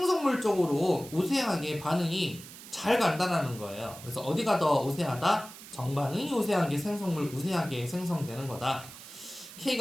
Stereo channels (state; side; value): noise; right; hiss, 16 dB below the sound